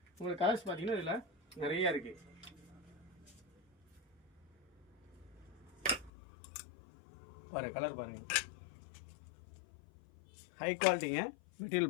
உங்களுக்கு கலர்ஸ் பார்த்தீங்கன்னா இதில் நிறையா இருக்குது. பாருங்கள் கலர் பாருங்கள், ஹை குவாலிட்டிங்க.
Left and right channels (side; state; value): right; drops out; at 6.1 s